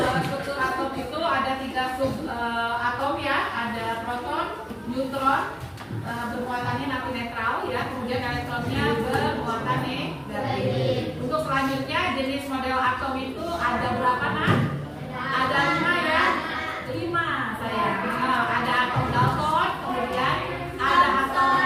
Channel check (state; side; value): identical; both; correlation 1.00